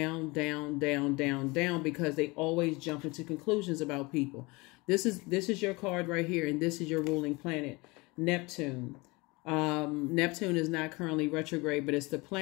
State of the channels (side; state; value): right; quieter; 25.0 dB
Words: down, down, down, down, because they always jump into conclusions about people. This is your card right here, and this is your ruling planet, Neptune. Neptune is not currently retrograde, but it's the